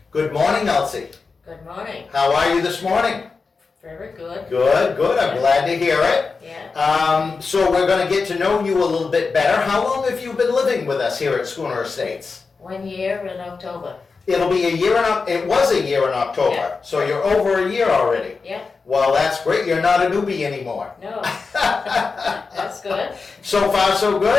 Good morning, Elsie. Good morning. How are you this morning? Very good. Good. I'm glad to hear it. Yeah. So we're going to get to know you a little bit better. How long have you been living with us here at Schooner Estates? 1 year in October. It was a year in October. Yeah. So you're over a year already. Yeah. Well, that's great. You're not a newbie anymore. No. That's good. So far, so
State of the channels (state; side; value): quieter; right; 4.6 dB